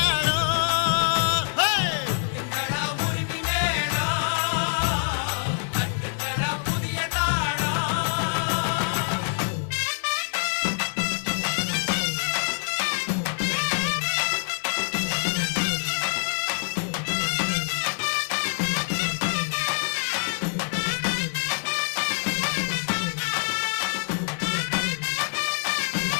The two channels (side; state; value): right; silent; 61 dB below the other